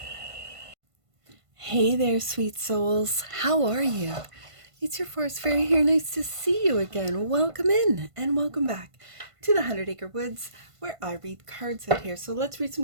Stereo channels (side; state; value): left; late; 1.5 ms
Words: Hey there, sweet souls. How are you? It's your forest fairy here. Nice to see you again. Welcome in and welcome back to the 100 Acre Woods, where I read cards out here. So let's read